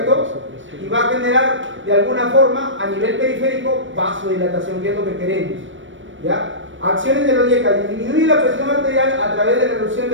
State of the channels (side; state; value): left; late; 0.56 ms